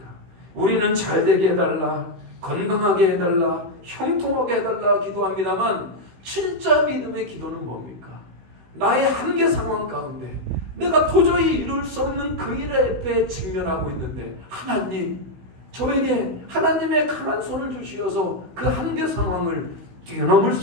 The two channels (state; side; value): late; left; 16 ms